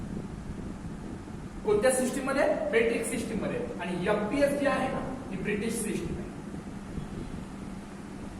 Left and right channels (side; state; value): both; identical; correlation 1.00